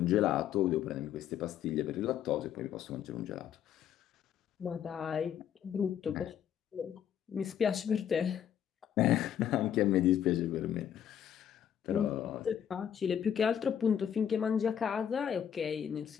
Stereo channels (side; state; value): right; quieter; 9.3 dB